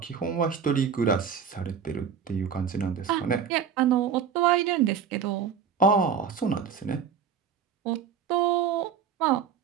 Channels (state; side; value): quieter; left; 7.2 dB